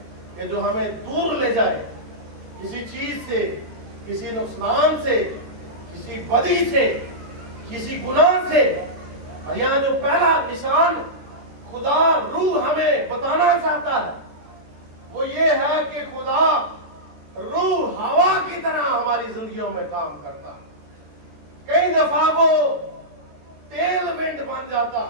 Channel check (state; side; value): late; left; 14 ms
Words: कि जो हमें दूर ले जाए किसी चीज से, किसी नुकसान से, किसी बदी से, किसी गुनाह से। और यहाँ जो पहला निशान खुदा रूह हमें बताना चाहता है वो ये है कि खुदा रूह हवा की तरह हमारी जिंदगियों में काम करता है। कई दफा वो टेल विंड बन जाता